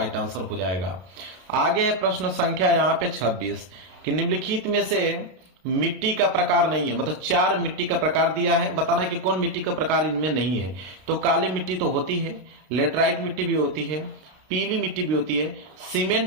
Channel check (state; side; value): late; left; 32 ms